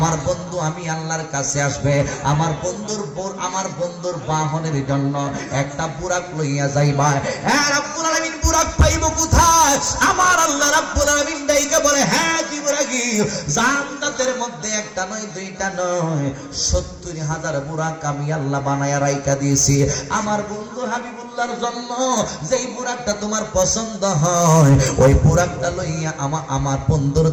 বন্ধু আমি আল্লাহর কাছে আসবে, আমার বন্ধুর বাহনের জন্য একটা বুরাক লইয়া যাইবা। হ্যাঁ রব্বুল আলামিন বুরাক পাইব কোথায়? আমার আল্লাহ রব্বুল আলামিন ডাইকা বলে, হ্যাঁ জিবরাইল জান্নাতের মধ্যে একটা নয় দুইটা নয় 70,000 বুরাক আমি আল্লাহ বানায়া রাইখা দিয়েছি আমার বন্ধু হাবিবুল্লাহর জন্য। যেই বুরাকটা তোমার পছন্দ হয় ওই বুরাকটা লইয়া আমার বন্ধুর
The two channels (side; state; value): both; identical; correlation 1.00